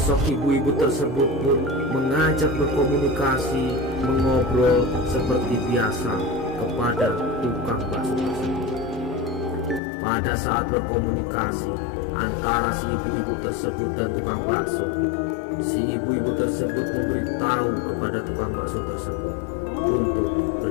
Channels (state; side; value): drops out; right; at 9.8 s